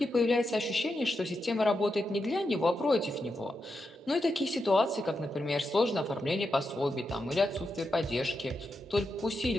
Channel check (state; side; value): normal; both; correlation 0.86